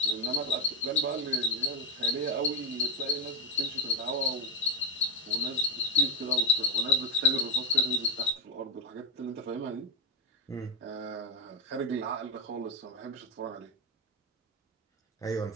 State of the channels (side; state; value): both; normal; correlation 0.07